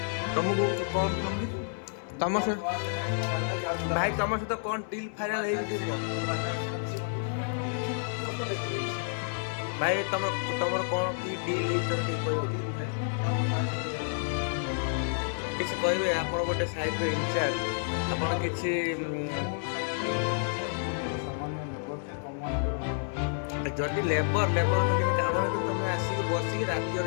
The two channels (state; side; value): silent; right; 58 dB below the other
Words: ତମକୁ କଣ ତମ ସହିତ ଭାଇ ତମ ସହିତ କଣ ଡିଲ୍ ଫାଇନାଲ ହେଇଛି ଭାଇ ତମର କଣ କି ଡିଲ୍ ହେଇଛି ଟିକେ କହିବ କିଛି କହିବେ ଆପଣ ଗୋଟେ ସାଇଟ୍ର ଇନଚାର୍ଜ ଆପଣ କିଛି ଯଦି ଲେବର ତ କିଛି କାମ ନାହିଁ ତମେ ଆସିକି ବସିକି ରାତି